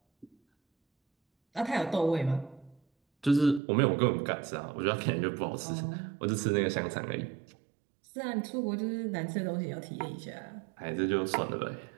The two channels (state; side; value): drops out; left; at 3.6 s